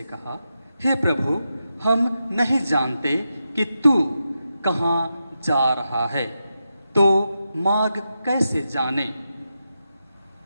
कहा, हे प्रभु, हम नहीं जानते कि तू कहाँ जा रहा है, तो मार्ग कैसे जाने?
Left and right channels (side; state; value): both; inverted; correlation -0.88